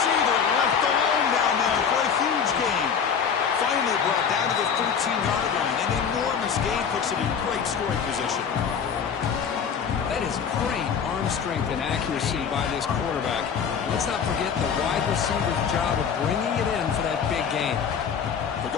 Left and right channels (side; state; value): right; quieter; 6.9 dB